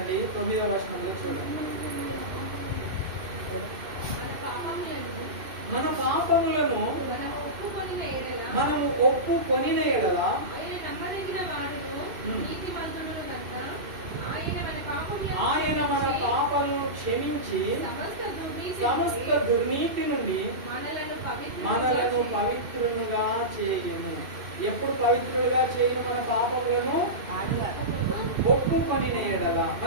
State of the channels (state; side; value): late; left; 2.6 ms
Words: 9వ వచనంలో చూడండి. మన పాపములను మనము ఒప్పుకొనిన ఎడల మనము ఒప్పుకొనిన ఎడల ఆయన నమ్మదగిన వాడును నీతిమంతుడును గనుక ఆయన మన పాపములను క్షమించి సమస్త దుర్నీతి నుండి మనలను పవిత్రులుగా చేయును. ఎప్పుడు పవిత్రులుగా చేయును? మన పాపములను ఒప్పుకొనిన ఎడల.